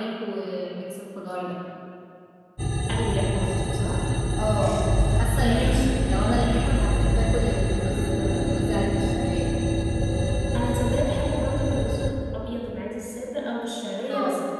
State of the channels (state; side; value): identical; both; correlation 1.00